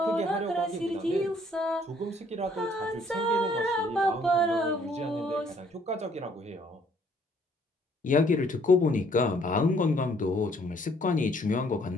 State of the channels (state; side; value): normal; both; correlation 0.63